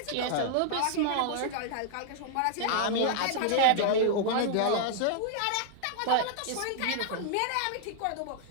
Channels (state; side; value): different; both; correlation -0.01